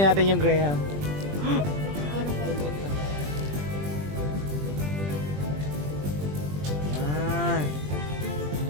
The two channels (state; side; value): late; left; 20 ms